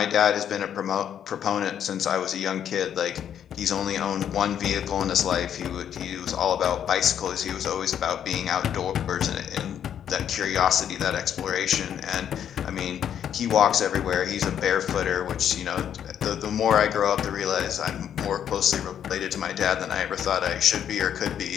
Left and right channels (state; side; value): quieter; right; 9.3 dB